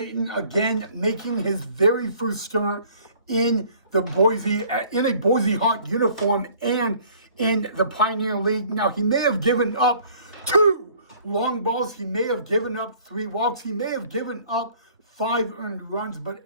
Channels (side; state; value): both; inverted; correlation -0.55